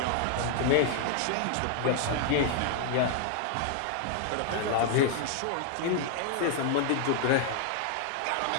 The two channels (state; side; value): different; both; correlation 0.00